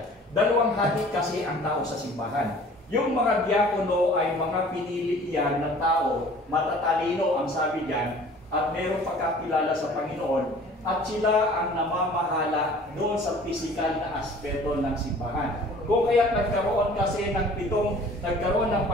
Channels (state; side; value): normal; both; correlation 0.49